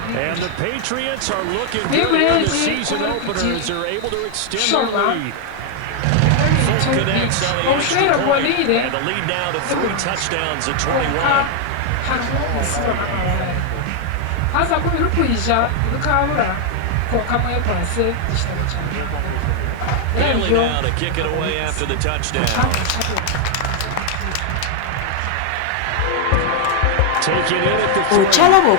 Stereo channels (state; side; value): different; both; correlation 0.00